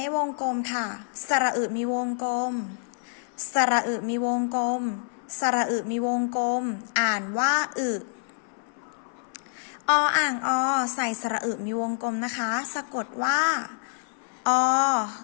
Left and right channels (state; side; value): silent; right; 60 dB below the other